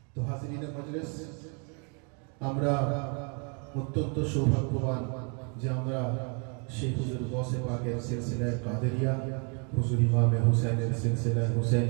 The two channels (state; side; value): quieter; left; 37.1 dB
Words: তো হাজিরিন মজলিস, আমরা অত্যন্ত সৌভাগ্যবান যে আমরা সেই হুজুর গৌসে পাকের সিলসিলায়ে কাদেরিয়া, হুজুর ইমামে হুসাইনের সিলসিলায়ে